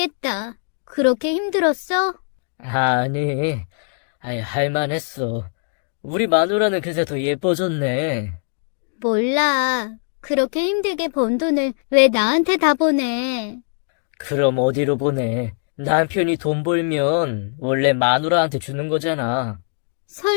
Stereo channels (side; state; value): right; silent; digital silence